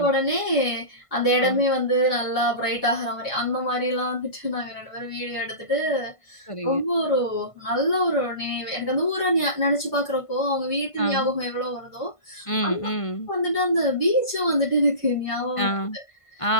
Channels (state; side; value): late; right; 1.5 ms